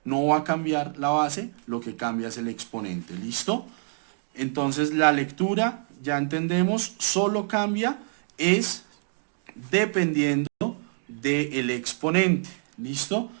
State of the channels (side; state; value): left; silent; 61 dB below the other